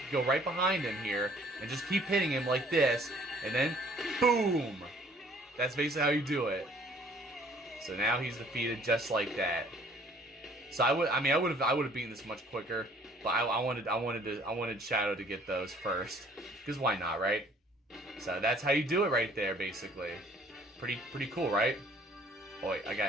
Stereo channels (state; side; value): normal; both; correlation 0.57